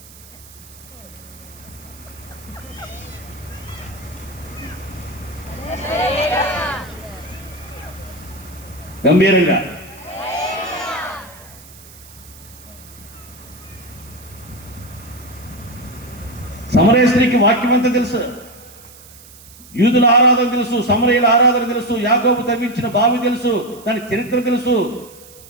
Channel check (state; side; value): noise; right; hiss, 21 dB below the sound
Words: గంభీరంగా సమరయ స్త్రీకి వాక్యం ఎంత తెలుసు, యూదుల ఆరాధన తెలుసు, సమరయుల ఆరాధన తెలుసు, యాకోబు తవ్వించిన బావి తెలుసు, దాని చరిత్ర తెలుసు,